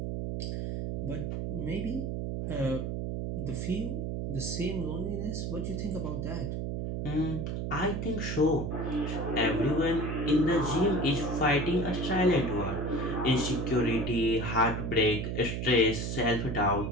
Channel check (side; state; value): right; noise; hum, 2 dB below the sound